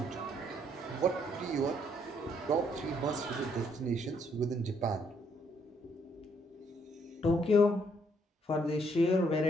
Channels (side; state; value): both; normal; correlation 0.70